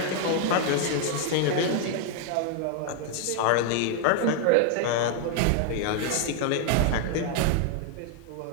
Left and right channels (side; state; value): both; different; correlation 0.00